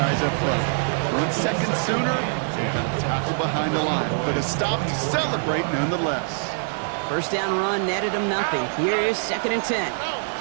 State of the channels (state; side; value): silent; left; 63 dB below the other